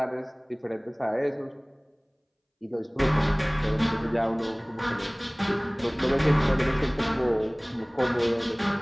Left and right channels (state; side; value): identical; both; correlation 1.00